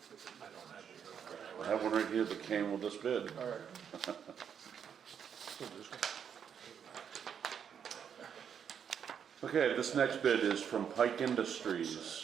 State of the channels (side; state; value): left; quieter; 7.9 dB